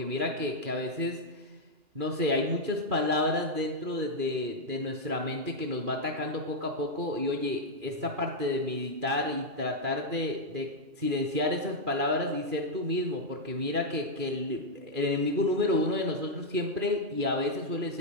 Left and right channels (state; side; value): late; left; 2.4 ms